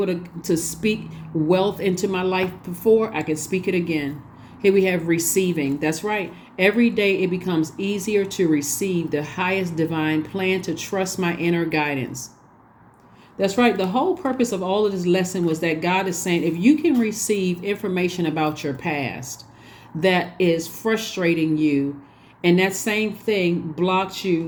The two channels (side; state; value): both; identical; correlation 1.00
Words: to speak wealth into my life before, I can speak it again. Here we have receiving. That's right. Every day it becomes easier to receive the highest divine plan, to trust my inner guidance. That's right. The whole purpose of all of this lesson was that God is saying, if you can receive information about your past that is frustrating you, and that same thing blocks